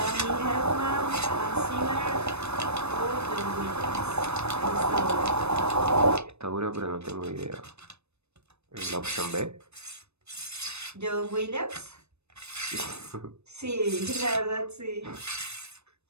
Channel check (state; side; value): late; left; 0.81 ms